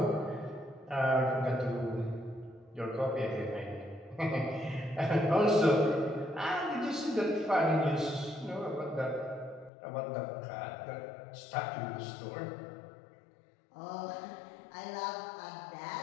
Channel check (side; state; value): right; drops out; at 9.7 s